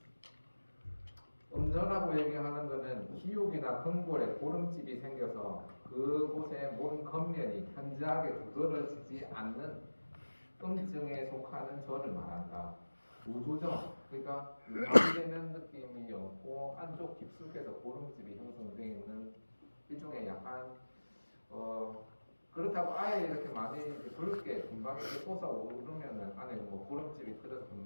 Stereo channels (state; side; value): inverted; both; correlation -1.00